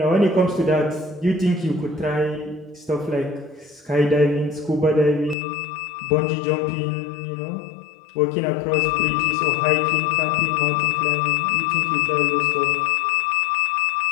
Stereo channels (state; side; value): drops out; right; at 5.4 s